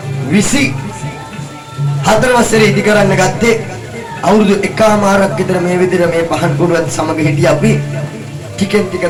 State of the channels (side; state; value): both; identical; correlation 1.00